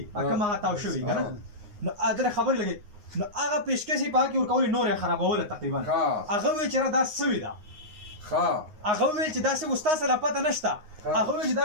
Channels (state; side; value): late; left; 9.6 ms